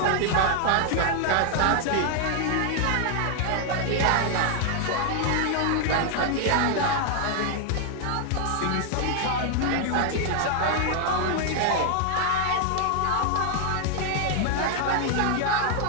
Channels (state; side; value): different; both; correlation 0.00